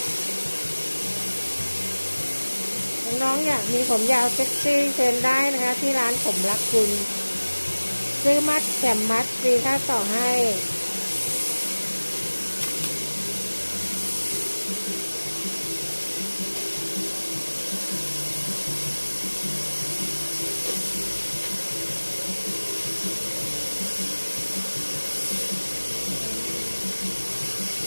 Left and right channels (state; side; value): inverted; both; correlation -1.00